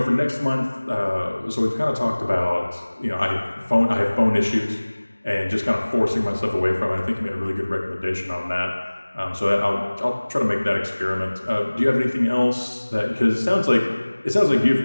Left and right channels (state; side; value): inverted; both; correlation -1.00